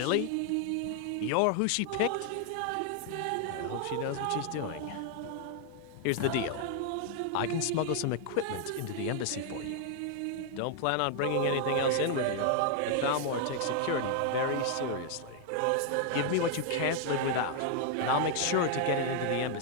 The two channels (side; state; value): both; different; correlation 0.00